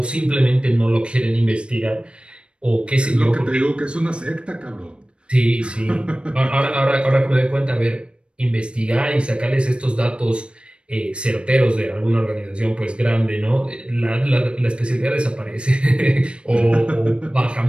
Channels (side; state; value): left; late; 0.057 ms